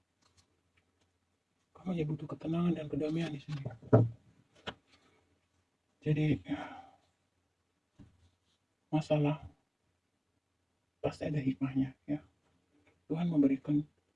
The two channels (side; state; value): both; identical; correlation 1.00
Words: Kamu hanya butuh ketenangan dan kedamaian di sini. Jadi masalah pasti ada hikmahnya ya. Tuhan memberikan